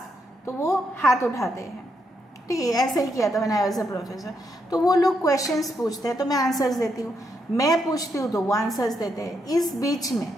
तो वो हाथ उठाते हैं। ठीक है, ऐसे ही किया था मैंने एज अ प्रोफेसर। तो वो लोग क्वेश्चंस पूछते हैं तो मैं आंसर्स देती हूँ, मैं पूछती हूँ तो वो आंसर्स देते हैं। इस बीच में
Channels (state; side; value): normal; both; correlation 0.79